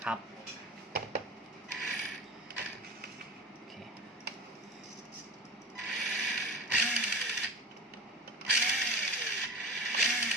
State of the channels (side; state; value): both; normal; correlation 0.34